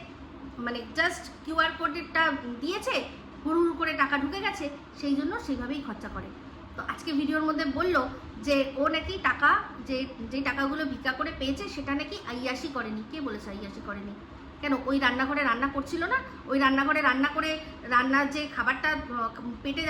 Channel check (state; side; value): identical; both; correlation 1.00